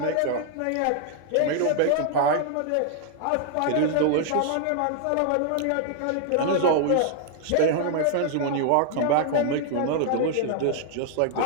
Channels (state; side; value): different; both; correlation 0.00